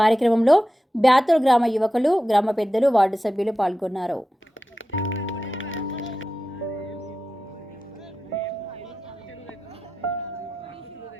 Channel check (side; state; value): both; normal; correlation 0.92